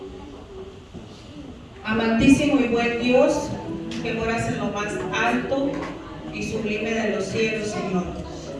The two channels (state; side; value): identical; both; correlation 1.00